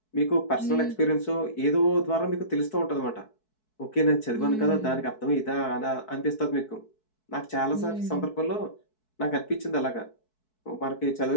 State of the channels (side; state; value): right; late; 4.6 ms